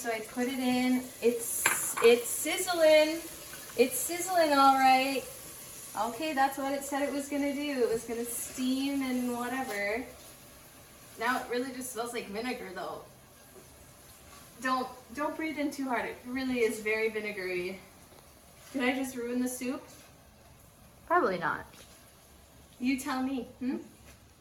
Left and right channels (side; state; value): both; identical; correlation 1.00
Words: I put it in. It's sizzling. It's sizzling all right. Okay, that's what it said it was gonna do. It was gonna steam and whatever. Now it really just smells like vinegar though. Don't breathe in too hard. It really is very vinegary. Did I just ruin the soup? Probably not. You tell me.